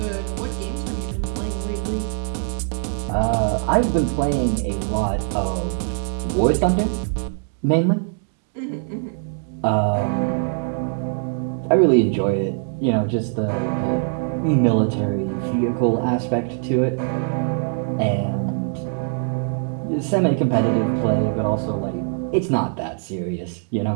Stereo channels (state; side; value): silent; left; digital silence